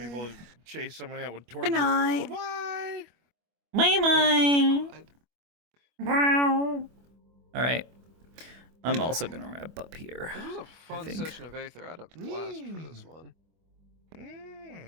chase somebody out with torches. Good night. Bye bye. All right. I'm also gonna wrap up here. This was a I fun think. session of Aether. I had a blast for this one.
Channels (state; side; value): late; left; 25 ms